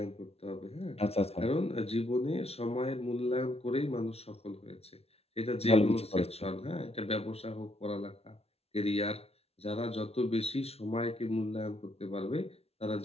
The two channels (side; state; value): right; late; 0.30 ms